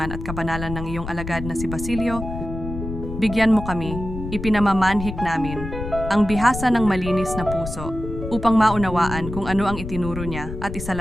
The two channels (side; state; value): left; noise; rumble, 8 dB below the sound